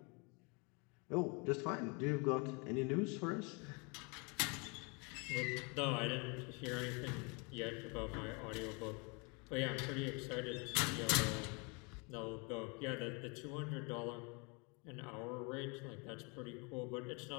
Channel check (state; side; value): quieter; right; 32.0 dB